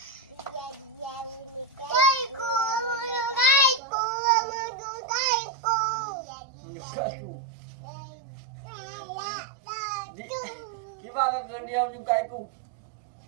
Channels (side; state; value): left; drops out; at 3.8 s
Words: Gimana kau diam juga aku?